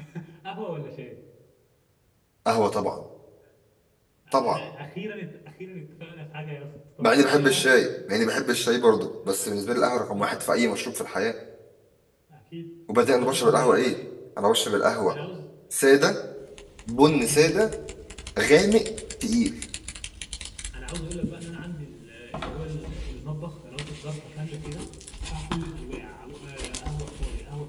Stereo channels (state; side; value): identical; both; correlation 1.00